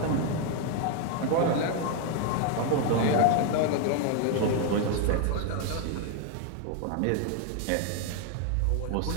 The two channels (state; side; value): different; both; correlation 0.00